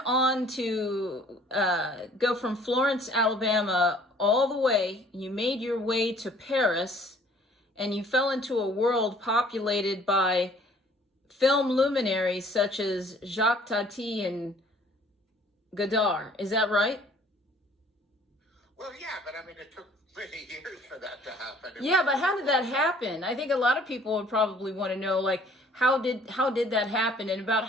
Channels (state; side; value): normal; both; correlation 0.56